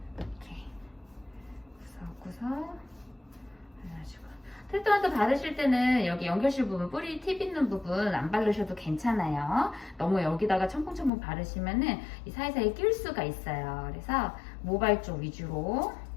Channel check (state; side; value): drops out; right; at 11.1 s